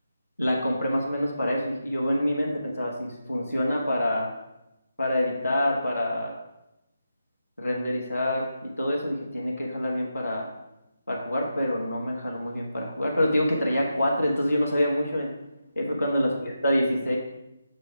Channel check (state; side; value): inverted; both; correlation -0.88